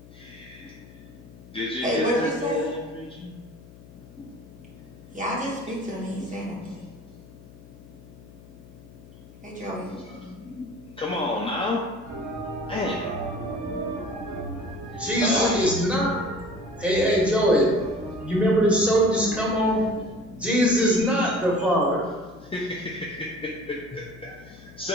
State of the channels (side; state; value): left; noise; hum, 20 dB below the sound